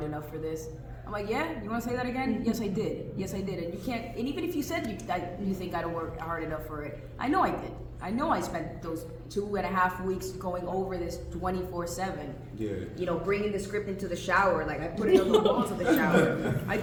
enough for this. I'm like, yeah, you want to say that again? Yes, I did. Yes, I did. And you can't, and even if you said you think I don't work hard enough for it, I know I did. I know I spent those 2.5 weeks going over this 24/7. Yeah. Bringing the script into the shower. Like, I put it on the walls of the shower. I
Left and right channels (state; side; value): identical; both; correlation 1.00